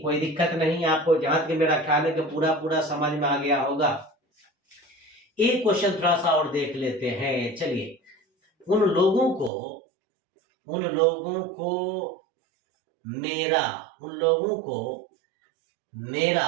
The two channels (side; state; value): left; drops out; at 9.5 s